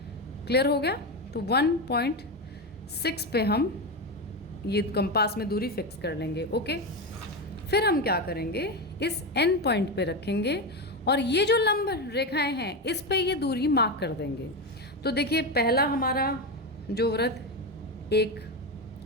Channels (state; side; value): normal; both; correlation 0.15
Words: क्लियर हो गया। तो 1.6 पे हम ये कंपास में दूरी फिक्स कर लेंगे। ओके, फिर हम क्या करेंगे, इस एन पॉइंट पे रखेंगे और ये जो लंब रेखाएं हैं इस पे ये दूरी मार्क कर देंगे। तो देखिए पहला हमारा जो वृत्त एक,